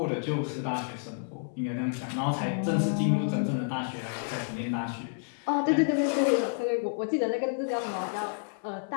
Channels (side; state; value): right; silent; 58 dB below the other